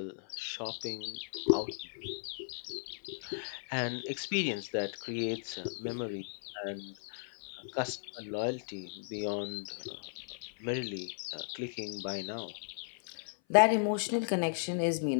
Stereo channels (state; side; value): silent; right; 54 dB below the other